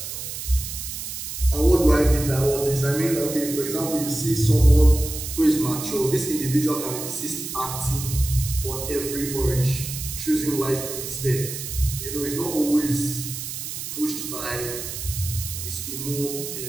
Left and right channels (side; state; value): right; noise; hiss, 7 dB below the sound